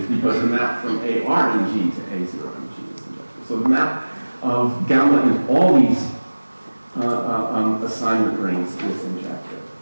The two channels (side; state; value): both; inverted; correlation -1.00